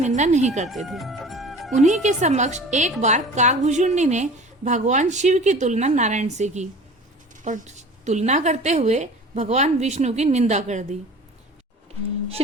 नहीं करते थे। उन्हीं के समक्ष एक बार काकभूषुंडी ने भगवान शिव की तुलना नारायण से की और तुलना करते हुए भगवान विष्णु की निंदा कर दी।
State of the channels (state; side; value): normal; both; correlation 0.41